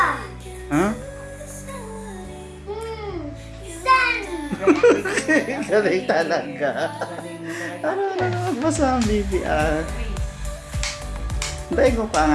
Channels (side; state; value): both; identical; correlation 1.00